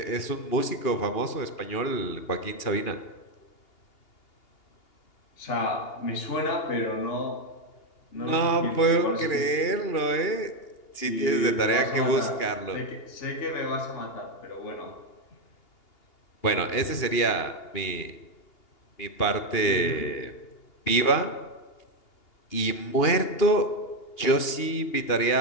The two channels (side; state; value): right; late; 2.8 ms